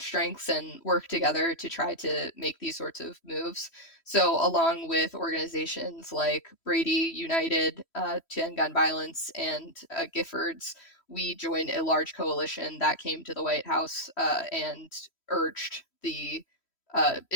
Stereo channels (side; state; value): right; late; 3.1 ms